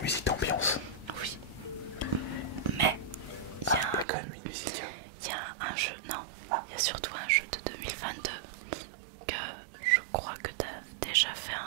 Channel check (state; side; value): drops out; left; at 4.0 s